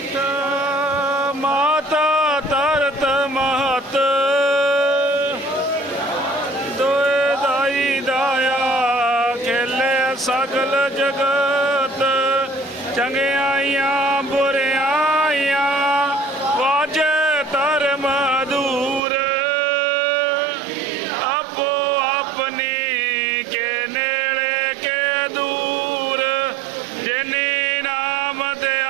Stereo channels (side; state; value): left; drops out; at 19.0 s